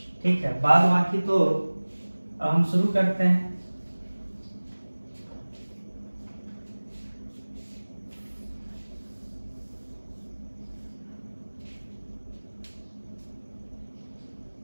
ठीक है, बाद बाकी तो हम शुरू करते हैं।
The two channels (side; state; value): both; inverted; correlation -1.00